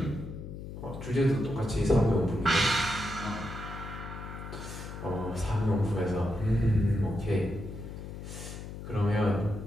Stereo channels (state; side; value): noise; left; hum, 10 dB below the sound